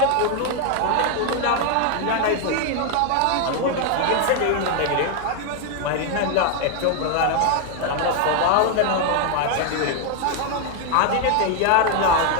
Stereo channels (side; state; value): both; different; correlation 0.01